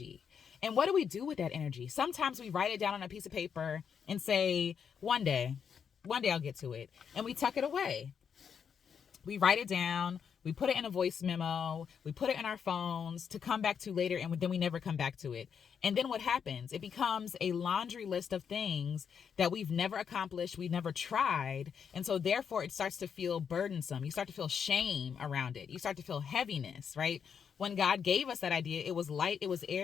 And what do we do with that energy? Sometimes we write it down on a piece of paper and say, one day I'll get to it. And we tuck it away. We write it down. We put it in a voice memo. We put it in our phones to come back to later, and then we never come back to it. And then what happens? It becomes a laundry list of things that we've never accomplished, we've never tried. And so therefore it starts to feel burdensome. You start to feel shame around it. You start to feel heaviness, right? When God gave us that idea, it was light, it was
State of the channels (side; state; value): right; quieter; 7.2 dB